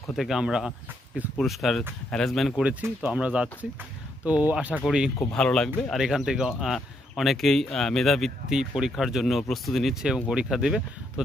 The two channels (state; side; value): normal; both; correlation 0.76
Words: থেকে আমরা কিছু পুরস্কার অ্যারেঞ্জমেন্ট করেছি। তো আমরা যাচ্ছি, তো আশা করি খুব ভালো লাগবে। আর এখান থেকে অনেকেই মেধাবৃত্তি পরীক্ষার জন্য প্রস্তুতি নিচ্ছে এবং পরীক্ষা দেবে। তো